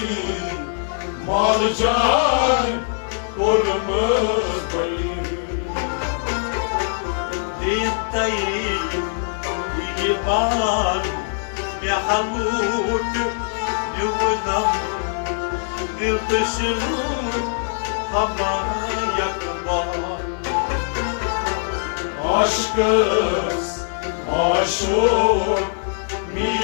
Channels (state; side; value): silent; right; digital silence